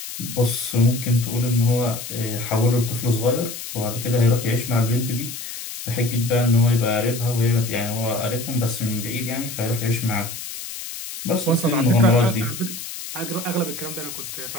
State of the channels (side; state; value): left; noise; hiss, 9 dB below the sound